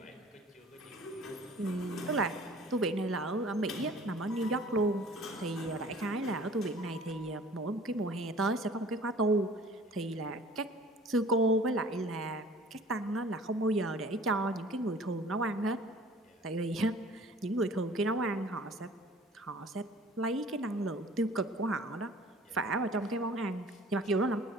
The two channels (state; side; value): normal; both; correlation 0.48